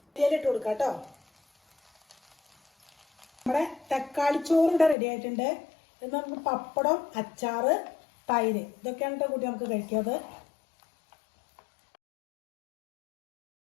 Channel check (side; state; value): right; drops out; at 5.0 s